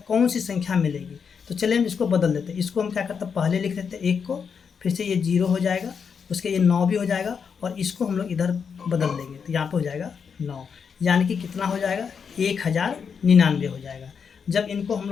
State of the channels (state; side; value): quieter; right; 6.4 dB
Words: कौन सी संख्या मिलेगी। तो चलिए हम इसको बदल देते हैं। इसको हम क्या करते हैं, पहले लिख देते हैं 1 को, फिर से ये 0 हो जाएगा, उसके ये 9 भी हो जाएगा, और इसको हम लोग इधर बदल देंगे तो यहाँ पे हो जाएगा 9। यानी कि कितना हो जाएगा, 1099 हो जाएगा। जब इनको हम